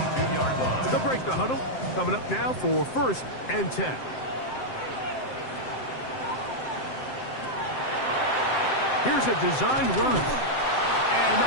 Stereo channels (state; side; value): late; right; 7.7 ms